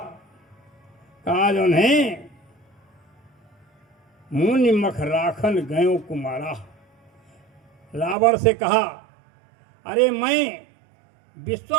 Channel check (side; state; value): left; drops out; at 8.2 s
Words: जो है मुनि मख राखन गयो कुमारा। रावण से कहा, अरे मैं